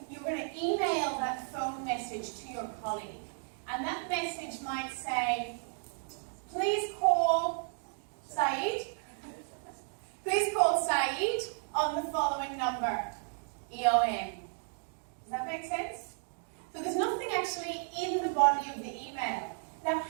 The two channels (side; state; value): left; silent; 55 dB below the other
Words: going to email that phone message to your colleague. And that message might say, please call Saeed. Please call Saeed on the following number, EOM. Does that make sense? So there's nothing actually in the body of the email. Now,